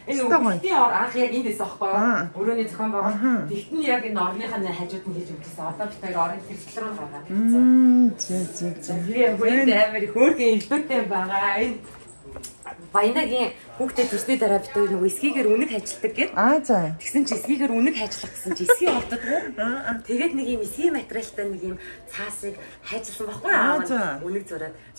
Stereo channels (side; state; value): both; inverted; correlation -1.00